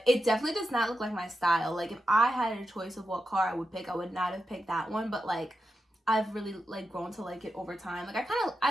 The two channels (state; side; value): normal; both; correlation 0.88